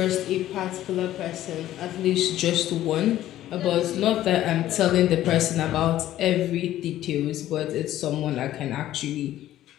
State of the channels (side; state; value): right; quieter; 13.4 dB